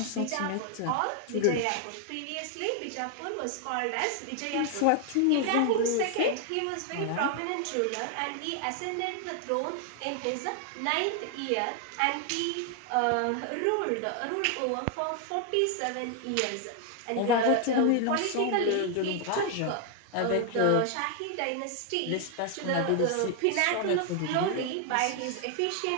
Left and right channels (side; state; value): both; different; correlation 0.00